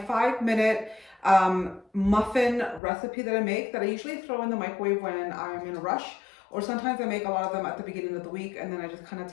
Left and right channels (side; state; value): right; drops out; at 2.8 s